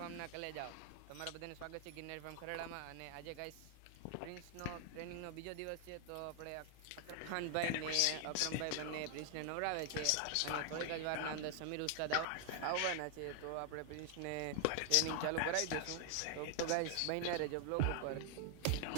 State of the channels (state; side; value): different; both; correlation 0.00